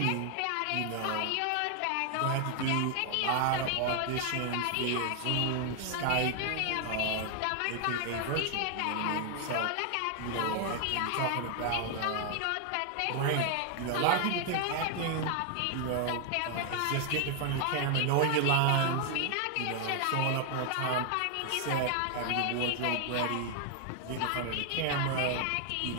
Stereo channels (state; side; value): different; both; correlation 0.00